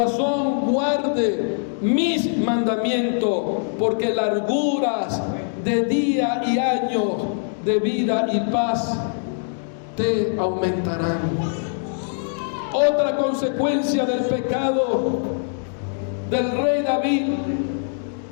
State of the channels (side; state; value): right; silent; digital silence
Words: guarde mis mandamientos, porque larguras de día y años de vida y paz te aumentarán. Otra consecuencia del pecado del rey David